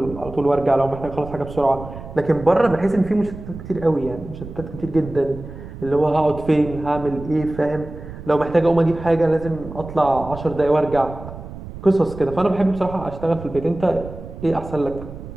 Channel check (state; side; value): noise; right; rumble, 13 dB below the sound